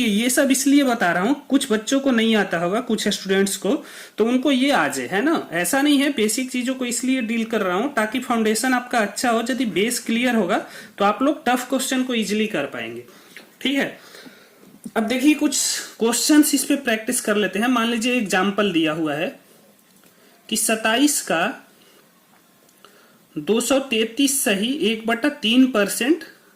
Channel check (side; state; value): both; identical; correlation 1.00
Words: ये सब इसलिए बता रहा हूं, कुछ बच्चों को नहीं आता होगा, कुछ स्टूडेंट्स को, तो उनको ये आ जाए, है ना। ऐसा नहीं है, बेसिक चीजों को इसलिए डील कर रहा हूं ताकि फाउंडेशन आपका अच्छा हो। यदि बेस क्लियर होगा तो आप लोग टफ क्वेश्चन को इजिली कर पाएंगे, ठीक है। अब देखिए कुछ क्वेश्चंस इस पे प्रैक्टिस कर लेते हैं। मान लीजिए एग्जाम्पल दिया हुआ है कि 27 का 233 सही 1/3%